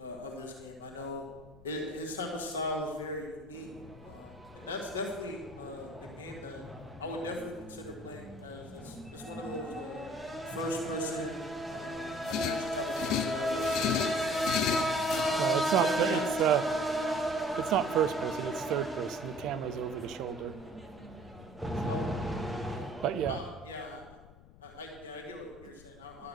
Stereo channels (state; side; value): noise; left; rumble, 21 dB below the sound